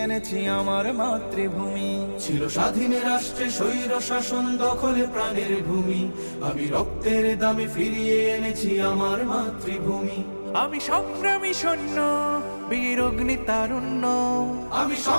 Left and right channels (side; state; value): both; inverted; correlation -1.00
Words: এনেছি আমার মাতৃভূমি। ছিল স্বাধীন রাষ্ট্রে স্বৈর শাসন দখলে প্রাণের ভূমি, আমি রক্তের দামে ফিরিয়ে এনেছি আমার মাতৃভূমি। আমি সংগ্রামী সৈন্য, বীর অগ্নি তারুণ্য। আমি